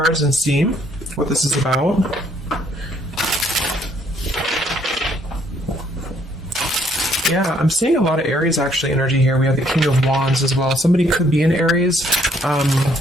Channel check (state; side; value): normal; both; correlation 0.67